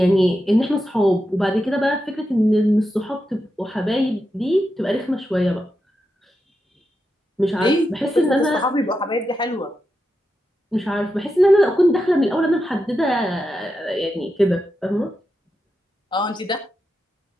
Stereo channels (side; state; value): both; normal; correlation 0.88